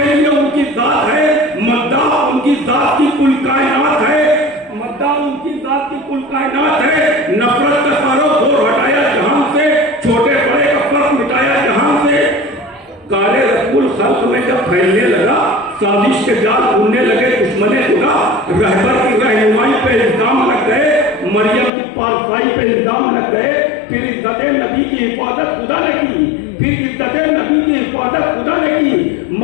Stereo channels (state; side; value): drops out; right; at 21.7 s